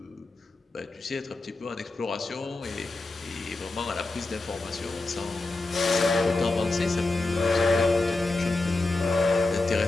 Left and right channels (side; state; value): right; quieter; 3.2 dB